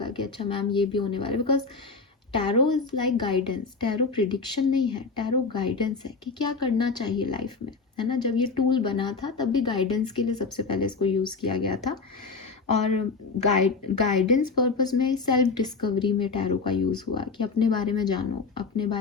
कि अच्छा मैम ये भी होने वाला है, because tarot is like guidance. Tarot prediction नहीं है, टैरो गाइडेंस है कि क्या करना चाहिए लाइफ में, है ना। जब ये टूल बना था तब भी गाइडेंस के लिए सबसे पहले इसको यूज़ किया गया था, और गाइडेंस पर्पस में, सेल्फ डिस्कवरी में टैरो का यूज़ हुआ कि अपने बारे में जानो, अपने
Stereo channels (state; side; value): quieter; right; 4.5 dB